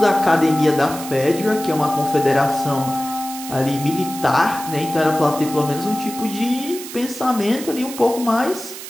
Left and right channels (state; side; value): noise; right; hiss, 11 dB below the sound